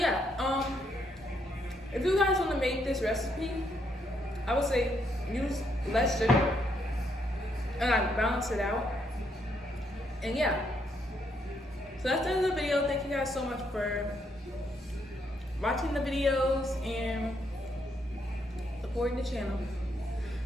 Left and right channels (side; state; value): both; normal; correlation 0.75